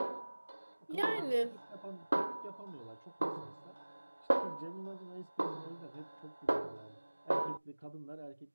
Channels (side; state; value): both; inverted; correlation -1.00